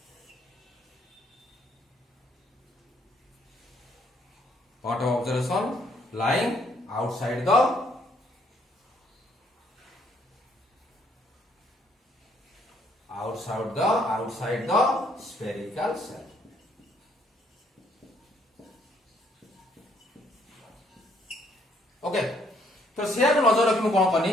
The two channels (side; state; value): both; normal; correlation 0.68